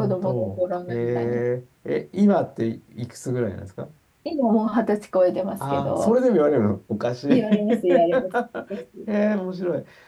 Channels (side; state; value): both; identical; correlation 1.00